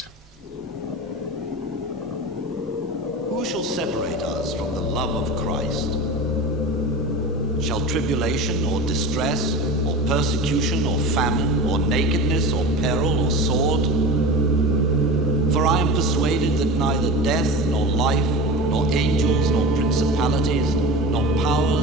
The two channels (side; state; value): both; normal; correlation 0.30